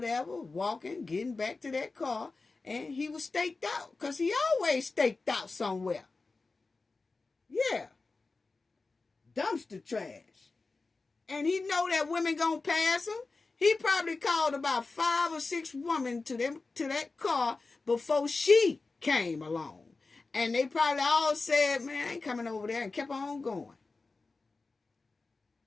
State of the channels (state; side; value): quieter; right; 3.8 dB